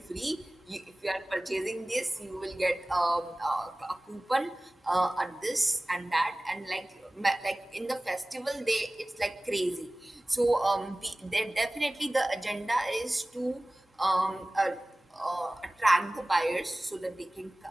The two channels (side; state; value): both; normal; correlation 0.98